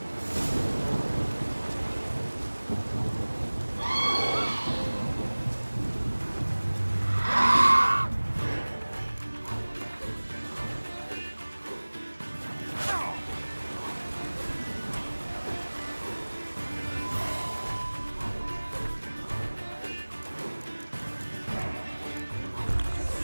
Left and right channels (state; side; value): inverted; both; correlation -1.00